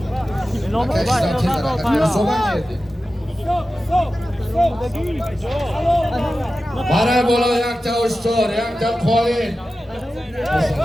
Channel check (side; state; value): both; normal; correlation 0.94